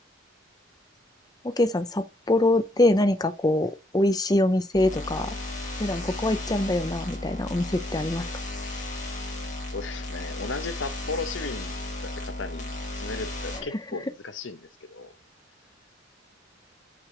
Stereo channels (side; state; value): both; normal; correlation 0.69